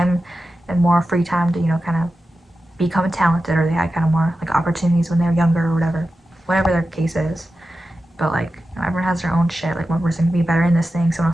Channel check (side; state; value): both; normal; correlation 0.92